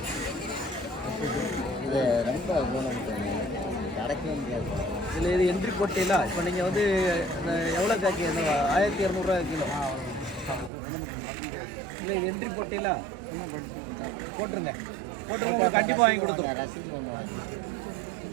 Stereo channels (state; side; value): drops out; left; at 10.7 s